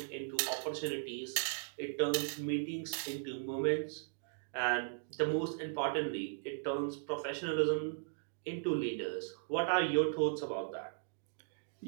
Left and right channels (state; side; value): silent; left; digital silence